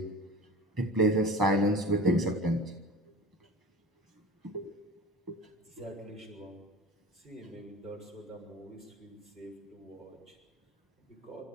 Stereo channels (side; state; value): both; normal; correlation 0.35